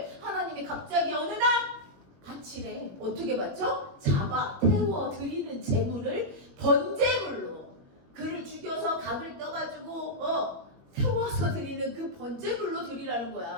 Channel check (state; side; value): late; left; 21 ms